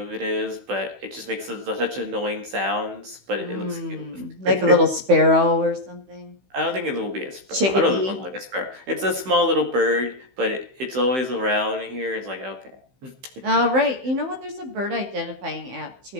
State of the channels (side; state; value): left; late; 15 ms